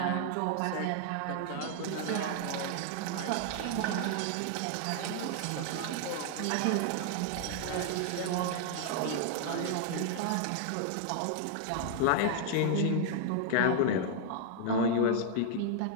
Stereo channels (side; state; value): both; different; correlation 0.00